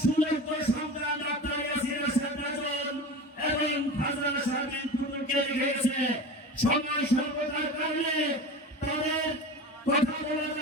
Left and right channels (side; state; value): both; normal; correlation 0.31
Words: সুযোগ্য সন্তান ডাক্তার ইয়াসির আশরাফ রাজন এবং ফাজলানা শারমিন টুটুলকে লিখে গেছে, সময় স্বল্পতার কারণে